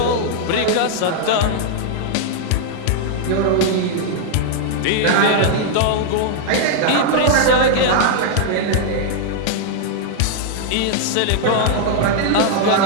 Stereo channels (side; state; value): both; different; correlation -0.01